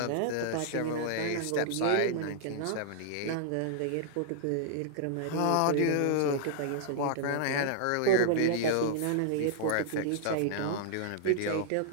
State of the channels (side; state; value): both; different; correlation -0.01